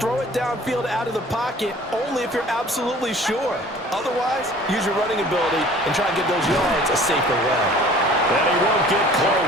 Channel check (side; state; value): both; normal; correlation 0.49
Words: it downfield out of the pocket only if you're absolutely sure. Otherwise, use your running ability and try and get those yards a safer way. And he won't get